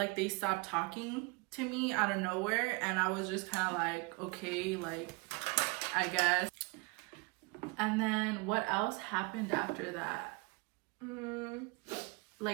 they stopped talking to me out of nowhere. And I was just kind of like, okay, like, I guess. And then what else happened after that?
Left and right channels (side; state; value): left; quieter; 28.9 dB